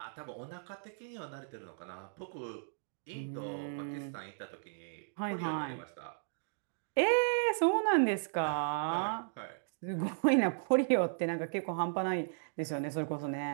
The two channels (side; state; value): left; silent; digital silence